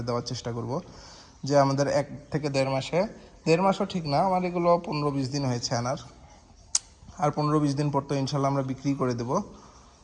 দেওয়ার চেষ্টা করব। যে আমাদের 1 থেকে 1.5 মাসে, 1.5 মাসও ঠিক না, আমার এগুলো 15-20 দিন হয়েছে আনার, আর 15-20 দিন পর তো ইনশাল্লাহ আমরা বিক্রি করে দেব।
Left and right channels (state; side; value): identical; both; correlation 1.00